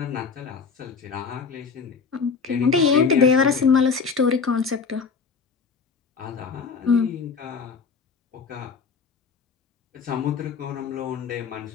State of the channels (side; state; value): right; quieter; 5.4 dB